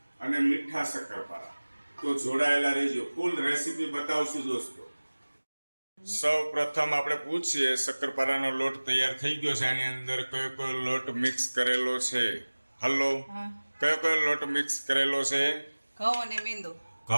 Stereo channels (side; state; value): both; inverted; correlation -1.00